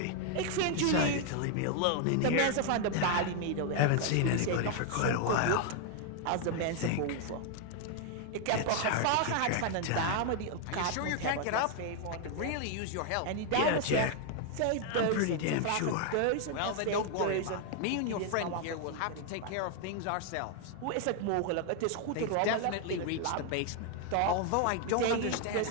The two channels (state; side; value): different; both; correlation 0.00